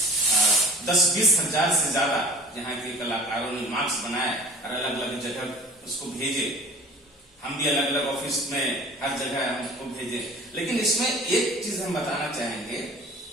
10-20 हजार से ज्यादा यहाँ के कलाकारों ने मास्क बनाए और अलग अलग जगह उसको भेजे। हम भी अलग अलग ऑफिस में हर जगह हम उसको भेजे। लेकिन इसमें एक चीज हम बताना चाहेंगे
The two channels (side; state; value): both; normal; correlation 0.44